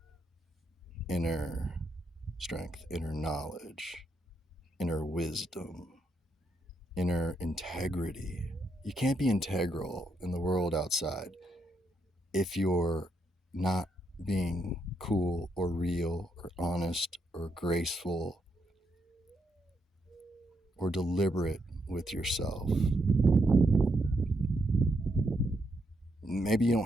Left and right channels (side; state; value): both; normal; correlation 0.78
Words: inner strength, inner knowledge, inner wisdom, inner integrity. You can't be integral in the world outside if you're not being cool or real or honest or graceful or deliberate with yourself. Maybe you don't